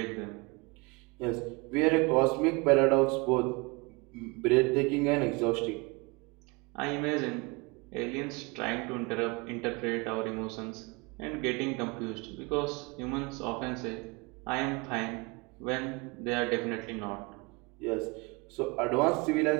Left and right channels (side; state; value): left; quieter; 27.3 dB